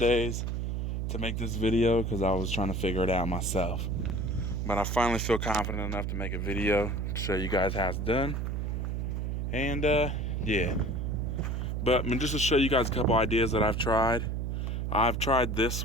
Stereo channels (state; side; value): noise; right; hum, 1 dB below the sound